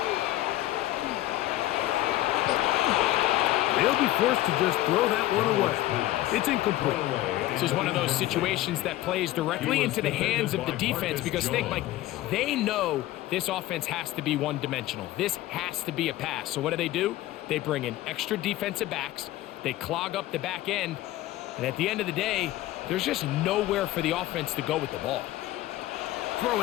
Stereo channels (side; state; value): right; quieter; 15.6 dB